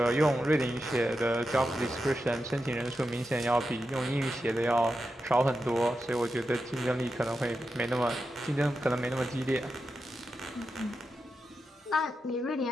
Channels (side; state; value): both; normal; correlation 0.89